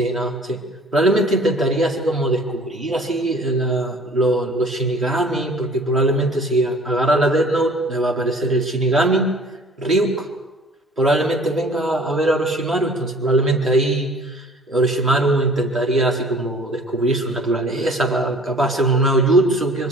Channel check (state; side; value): normal; both; correlation 0.50